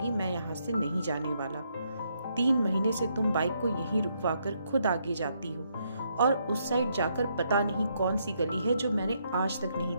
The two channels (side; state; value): both; inverted; correlation -0.75